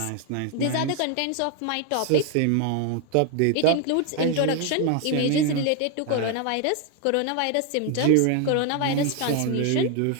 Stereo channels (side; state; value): both; different; correlation 0.01